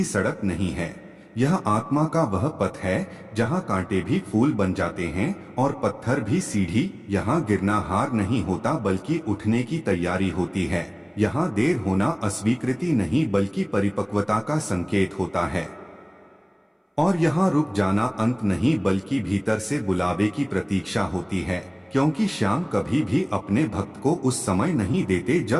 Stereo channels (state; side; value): identical; both; correlation 1.00